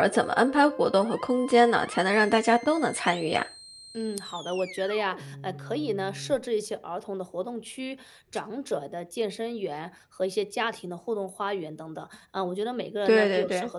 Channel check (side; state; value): both; identical; correlation 1.00